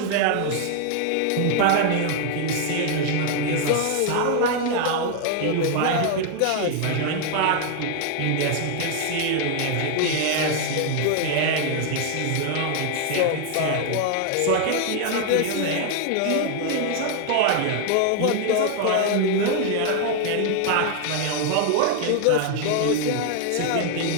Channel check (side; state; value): both; different; correlation 0.00